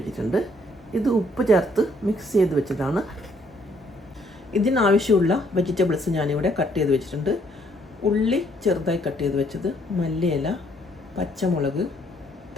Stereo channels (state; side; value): normal; both; correlation 0.67